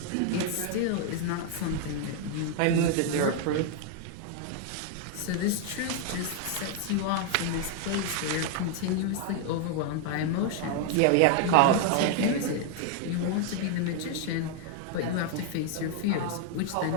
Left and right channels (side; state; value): both; different; correlation 0.00